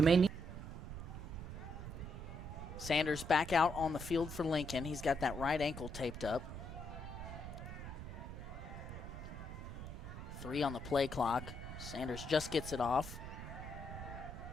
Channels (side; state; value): right; noise; rumble, 8 dB below the sound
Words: may need. Sanders back out on the field for Lincoln. He's got that right ankle taped up. 3 on the play clock. Sanders just gets it off.